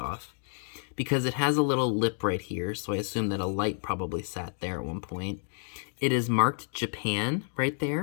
Because it has a little lip right here, so I assume that a light probably sat there at one point. It is marked Japan right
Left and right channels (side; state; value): right; silent; 58 dB below the other